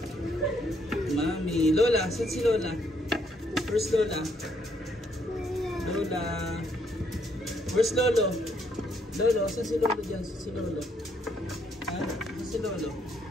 Mami. Lola. Saan si Lola? Where's Lola? Lola. Where's Lolo? Lolo. Saan si Lolo dyan? Saan si Lolo? Ha? Saan si Lolo?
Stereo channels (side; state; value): both; normal; correlation 0.72